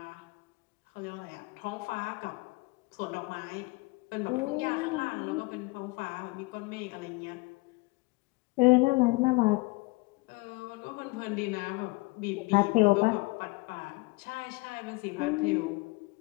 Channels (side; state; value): right; quieter; 24.7 dB